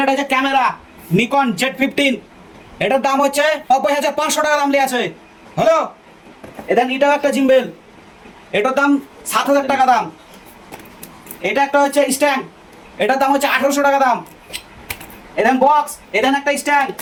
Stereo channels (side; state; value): both; identical; correlation 1.00